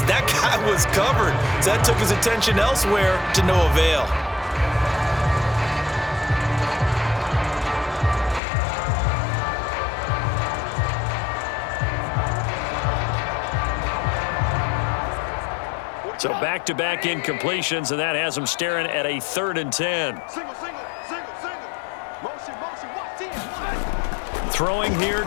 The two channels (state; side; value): drops out; right; at 8.4 s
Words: that guy was covered. So that took his attention elsewhere to no avail. So back-to-back incompletions, and that has him staring at a 3rd and 10. Throwing here,